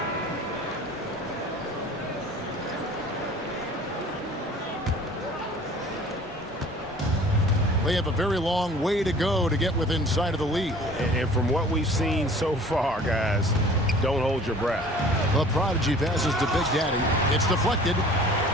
They have a very long way to go to get within sight of the lead. And from what we've seen so far, guys, don't hold your breath. The prodigy passes to Big Daddy. It's deflected.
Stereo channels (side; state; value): both; normal; correlation 0.48